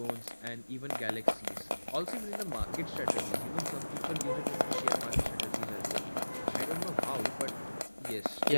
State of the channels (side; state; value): both; inverted; correlation -1.00